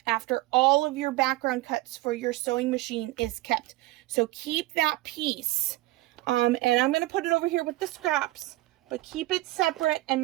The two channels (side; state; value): left; quieter; 18.8 dB